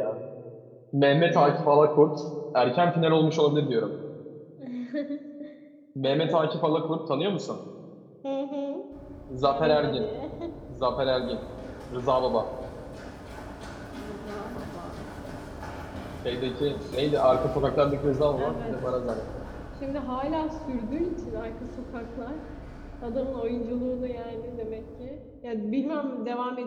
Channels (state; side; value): identical; both; correlation 1.00